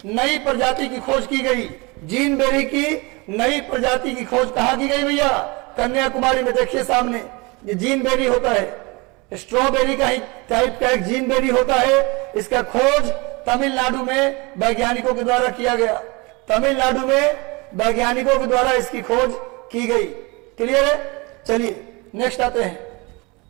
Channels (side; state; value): left; quieter; 26.6 dB